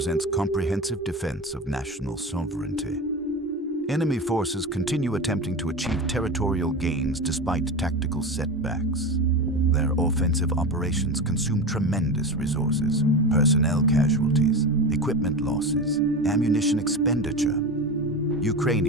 comprehensive defense of national sovereignty. Enemy forces continue attempting to achieve territorial gains despite tactical setbacks. Their offensive operations consume tremendous resources, personnel casualties, equipment losses, ammunition expenditure.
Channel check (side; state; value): both; normal; correlation 0.25